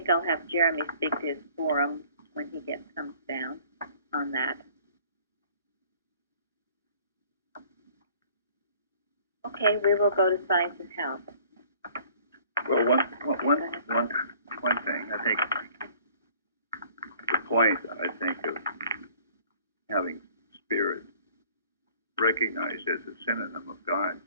I'll have Jeremy speak to his forum when he comes down on that. Okay, we will go to science and health. Well, one thing, I think the point, of having spirit recognized as a synonym of God,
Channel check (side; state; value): both; inverted; correlation -0.53